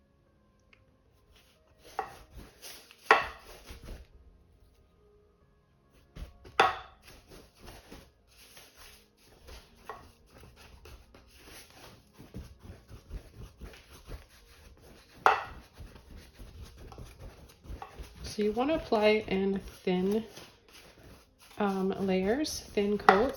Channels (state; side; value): identical; both; correlation 1.00